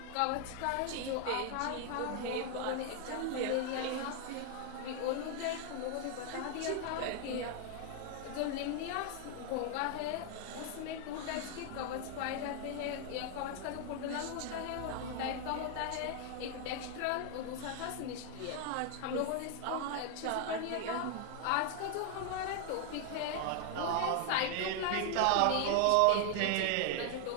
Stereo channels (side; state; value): both; different; correlation 0.00